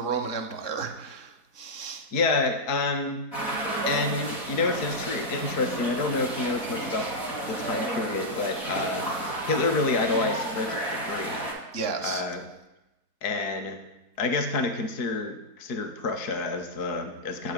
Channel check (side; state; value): right; late; 4.1 ms